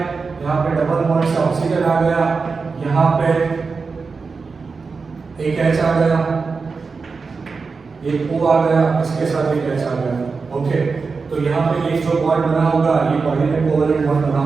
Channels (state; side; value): quieter; left; 4.7 dB